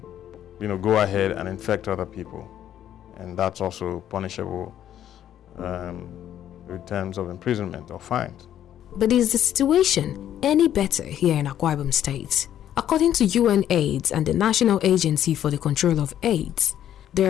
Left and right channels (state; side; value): quieter; right; 10.9 dB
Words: go ahead and infect other people, and that's also punishable with terms of imprisonment or fines. But is the situation any better here in Akwa Ibom State? According to UNAIDS and the National Agency for the Control of AIDS, there